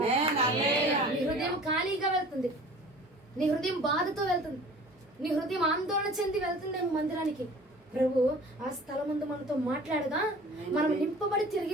హృదయం ఖాళీగా వెళ్తుంది, నీ హృదయం బాధతో వెళ్తుంది, నీ హృదయం ఆందోళన చెంది వెళ్తుంది మందిరానికి. ప్రభు ఆ స్థలం ముందు మనతో మాట్లాడగా మనం నింపబడి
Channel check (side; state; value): both; normal; correlation 0.45